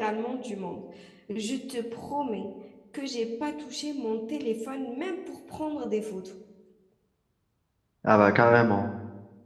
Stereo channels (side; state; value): both; identical; correlation 1.00